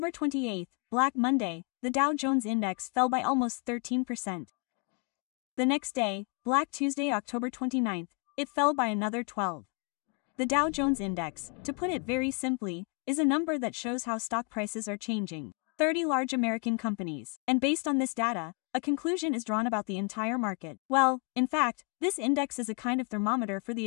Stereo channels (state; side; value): quieter; right; 34.9 dB